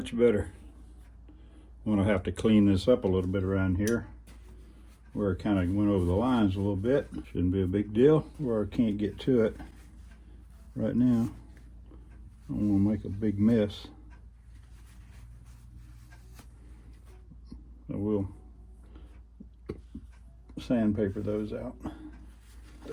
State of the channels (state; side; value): identical; both; correlation 1.00